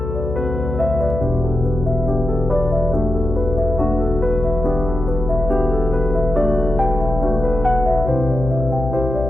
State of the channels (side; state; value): left; noise; hum, 5 dB below the sound